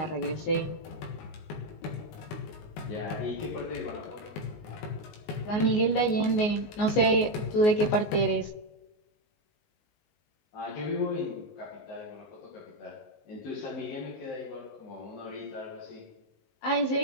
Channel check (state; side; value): late; right; 19 ms